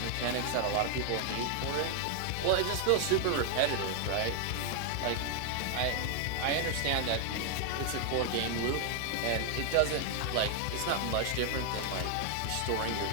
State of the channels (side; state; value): both; different; correlation 0.00